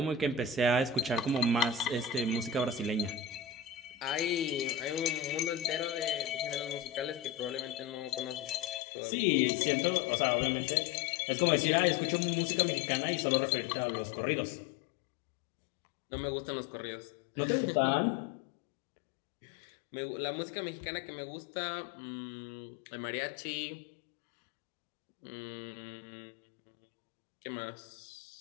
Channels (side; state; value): right; drops out; at 8.8 s